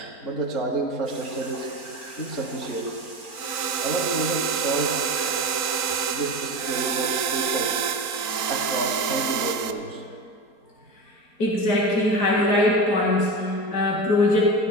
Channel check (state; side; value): late; right; 4.4 ms